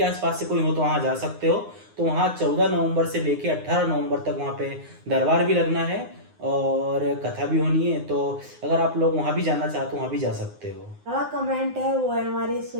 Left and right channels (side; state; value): left; late; 9.6 ms